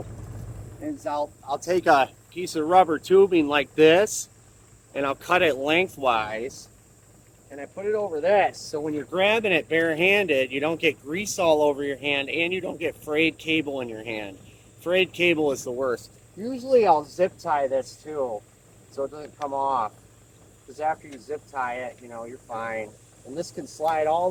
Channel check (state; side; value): identical; both; correlation 1.00